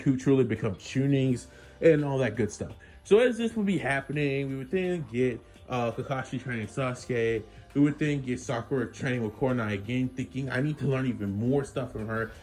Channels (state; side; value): identical; both; correlation 1.00